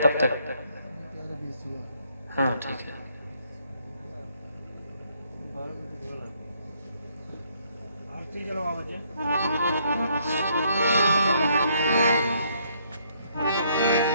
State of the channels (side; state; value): both; inverted; correlation -0.69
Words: तक। हाँ ठीक है। आरती चलो बाबा जी।